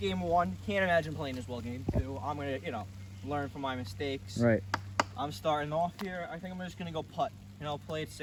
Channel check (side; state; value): both; identical; correlation 1.00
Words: 1. Can't imagine playing this well, game 2. I'm gonna, learn from my mistakes. Right. I'm starting off here. I think I'm just gonna go putt. Play it